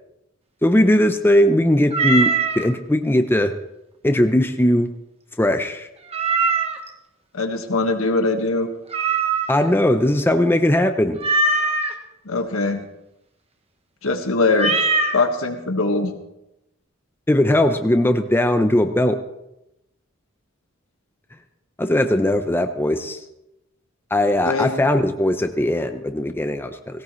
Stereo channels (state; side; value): normal; both; correlation 0.57